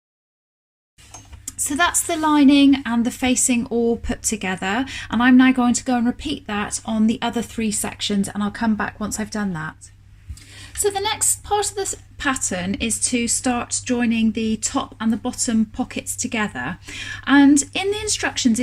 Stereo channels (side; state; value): both; identical; correlation 1.00